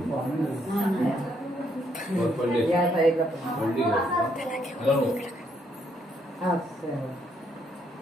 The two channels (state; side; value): normal; both; correlation 0.72